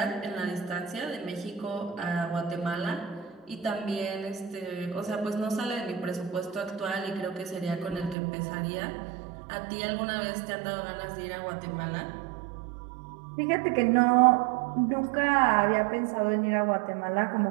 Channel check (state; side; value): drops out; left; at 8.2 s